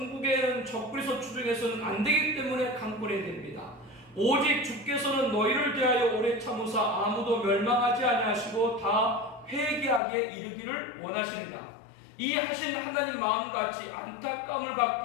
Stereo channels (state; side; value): drops out; right; at 10.0 s